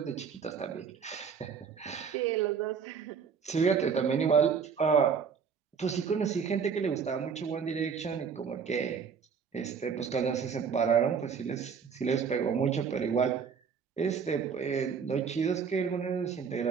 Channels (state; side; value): quieter; left; 6.4 dB